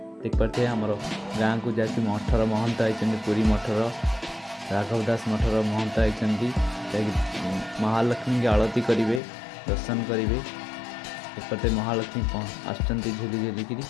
देख पारे आमर गाँव को जहाँकि मठर महंत आई पुरी मठर राघव दास मठर महंत आई महालक्ष्मी की आरती करेंगे, दर्शन करेंगे। एक महालक्ष्मी आसुँच झुली झुलिकी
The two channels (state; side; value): drops out; right; at 9.2 s